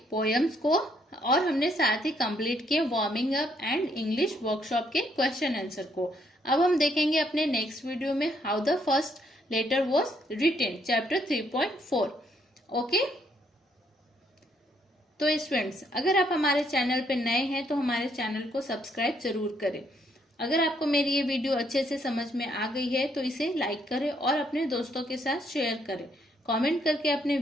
पोएम्स को और हमने साथ ही कंप्लीट किए warming up and English workshop के क्वेश्चन आंसर को। अब हम देखेंगे अपने नेक्स्ट वीडियो में how the first letter was written, chapter 3.4। Okay, तो स्टूडेंट्स अगर आप हमारे चैनल पे नए हैं तो हमारे चैनल को सब्सक्राइब जरूर करें। अगर आपको मेरी ये वीडियो अच्छे से समझ में आ गई है तो इसे लाइक करें और अपने दोस्तों के साथ शेयर करें। कमेंट करके अपने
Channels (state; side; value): normal; both; correlation 0.71